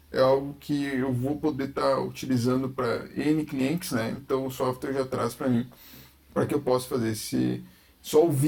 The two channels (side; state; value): both; identical; correlation 1.00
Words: é algo que eu vou poder estar utilizando para N clientes, né? Então, o software já traz para mim, para que eu possa fazer só o